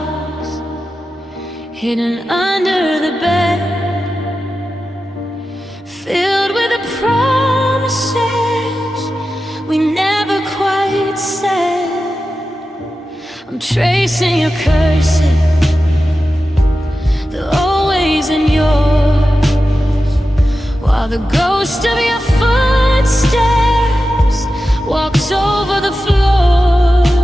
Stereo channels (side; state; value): both; normal; correlation 0.92